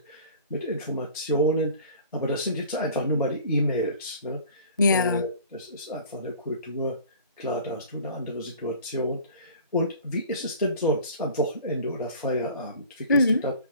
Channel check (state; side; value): inverted; both; correlation -0.46